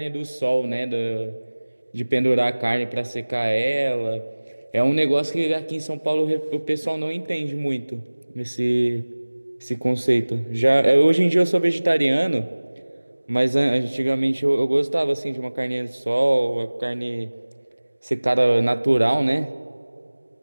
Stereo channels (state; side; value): inverted; both; correlation -1.00